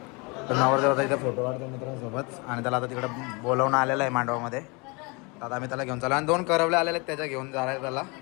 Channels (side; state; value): right; quieter; 29.0 dB